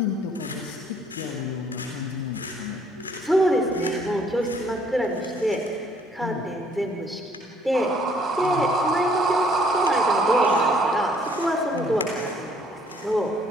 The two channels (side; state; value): both; normal; correlation 0.63